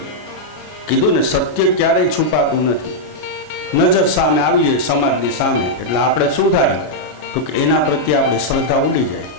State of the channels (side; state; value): right; late; 33 ms